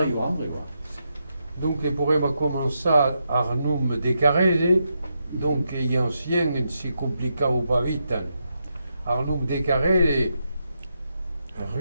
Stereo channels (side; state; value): both; inverted; correlation -0.83